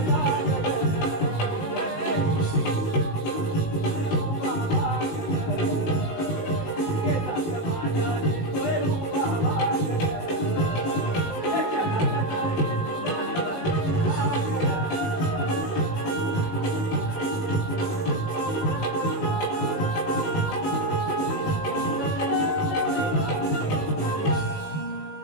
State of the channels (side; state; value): right; late; 18 ms